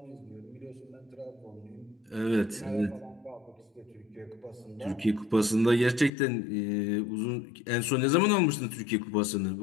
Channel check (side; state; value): right; drops out; at 6.1 s